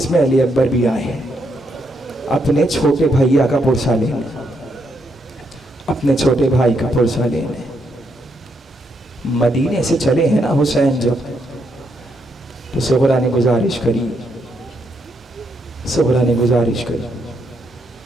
में अली अकबर भी आए हैं अपने छोटे भैया का पुरसा लेने, अपने छोटे भाई का पुरसा लेने। मदीने से चले हैं ना हुसैन जब, तो सुहरा ने गुजारिश करी, सुहरा ने गुजारिश करी,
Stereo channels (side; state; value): both; normal; correlation 0.77